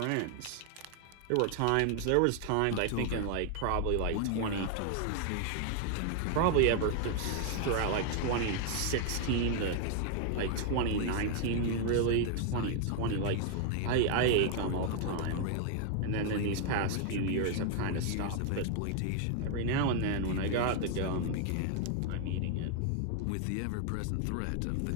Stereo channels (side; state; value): both; different; correlation 0.00